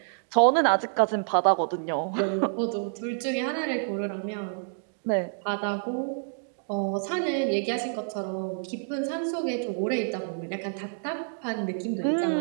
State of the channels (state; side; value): silent; left; digital silence